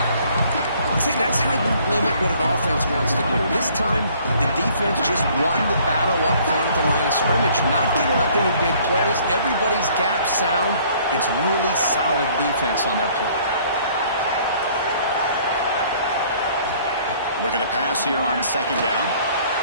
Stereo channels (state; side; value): inverted; both; correlation -0.58